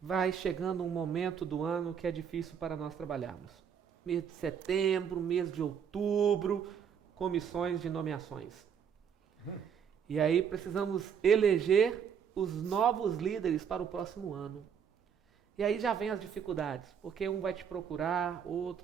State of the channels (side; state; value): left; quieter; 7.6 dB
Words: chegando um momento do ano que é difícil para nós trabalharmos. Mês de setembro, mês de outubro, comissões de nomeações. E aí precisamos eleger os novos líderes para o próximo ano. E aí já vem as dificuldades, porque um vai te procurar, outro,